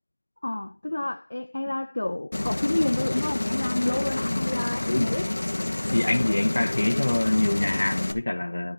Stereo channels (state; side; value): inverted; both; correlation -1.00